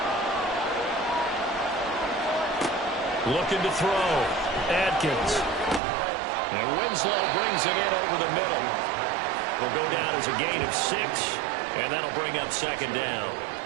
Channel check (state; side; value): drops out; left; at 5.8 s